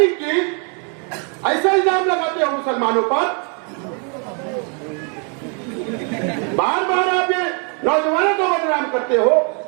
की, ऐसा इल्जाम लगाते हो मुसलमानों पर। बार बार आप ये नौजवानों को बदनाम करते हो,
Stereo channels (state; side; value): quieter; left; 38.4 dB